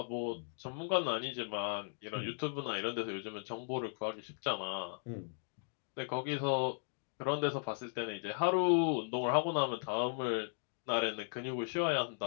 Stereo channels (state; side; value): silent; right; digital silence